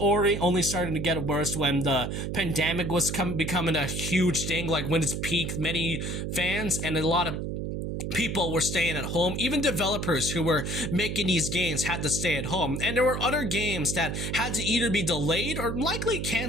only starting to get worse when the pandemic was becoming a huge thing, like when it's peaked, many fans and a lot of people were staying at home. Even developers who were making these games had to stay at home. And there were other games that had to either be delayed or likely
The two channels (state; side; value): noise; right; hum, 3 dB below the sound